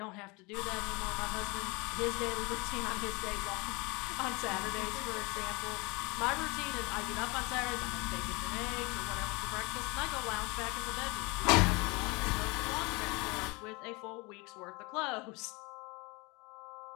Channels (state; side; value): quieter; right; 26.6 dB